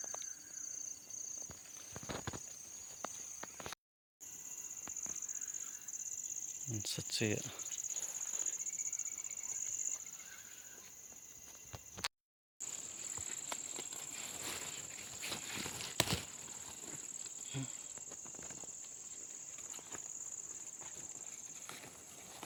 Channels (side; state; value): both; identical; correlation 1.00